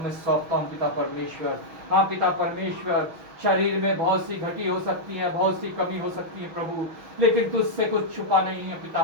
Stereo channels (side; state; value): left; late; 6.3 ms